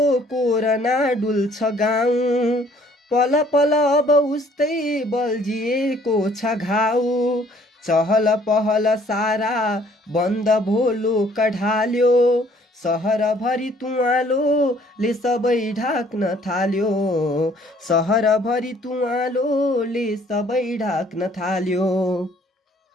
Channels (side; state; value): both; normal; correlation 0.60